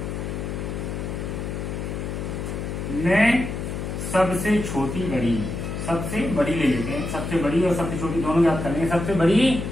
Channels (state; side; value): noise; left; hum, 4 dB below the sound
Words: मैं सबसे छोटी बड़ी, सबसे बड़ी ले लेते हैं, सबसे बड़ी और सबसे छोटी दोनों याद करेंगे। सबसे बड़ी